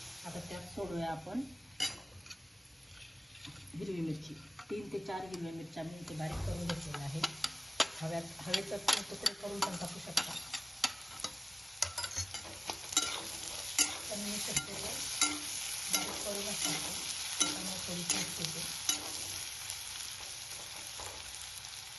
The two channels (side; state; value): both; normal; correlation 0.97